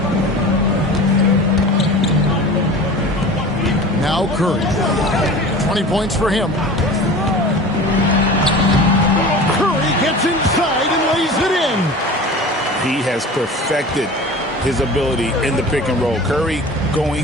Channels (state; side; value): normal; both; correlation 0.37